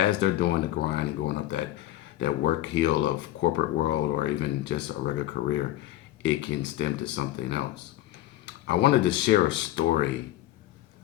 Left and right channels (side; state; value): right; quieter; 14.5 dB